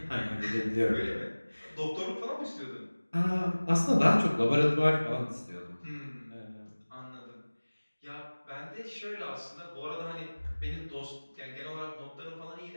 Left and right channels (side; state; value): both; inverted; correlation -1.00